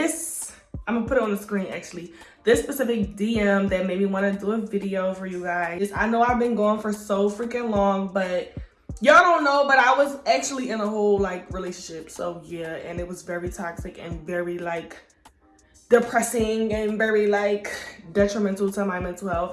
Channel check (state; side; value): identical; both; correlation 1.00